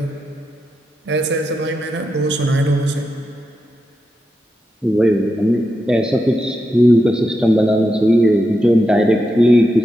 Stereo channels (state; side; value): normal; both; correlation 0.86